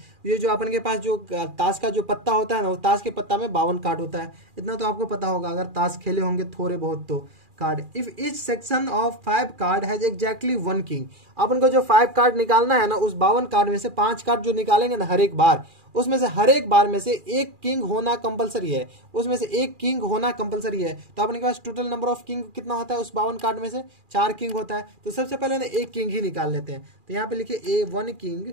ये जो अपन के पास जो ताश का जो पत्ता होता है ना, वो ताश के पत्ता में 52 कार्ड होता है, इतना तो आपको पता होगा अगर ताश खेले होंगे थोड़े बहुत तो। Card, if each section of 5 card has exactly 1 king. अपन को जो 5 कार्ड निकालना है ना, उस 52 कार्ड में से 5 कार्ड जो निकालेंगे ना हर एक बार, उसमें से हर एक बार में से एक किंग होना कंपलसरी है, उसमें से एक किंग होना कंपलसरी है। तो अपने के पास टोटल नंबर ऑफ किंग कितना होता है उस 52 कार्ड में से, 4 किंग होता है। तो सबसे पहले ना एक किंग ही निकाल लेते हैं, तो यहाँ पे लिखिए A1 king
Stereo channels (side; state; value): left; late; 2.4 ms